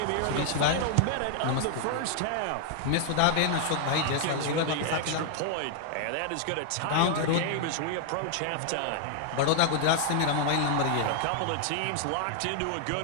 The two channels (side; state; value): both; different; correlation -0.01